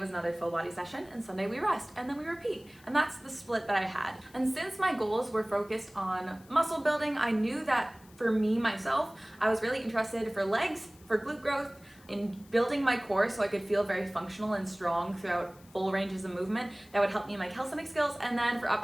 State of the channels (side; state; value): left; noise; hiss, 26 dB below the sound